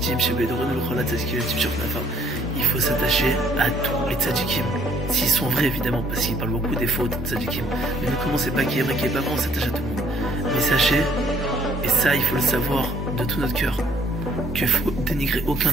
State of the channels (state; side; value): normal; both; correlation 0.62